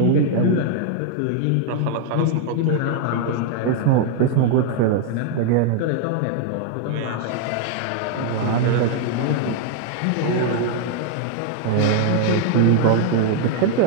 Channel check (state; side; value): different; both; correlation 0.00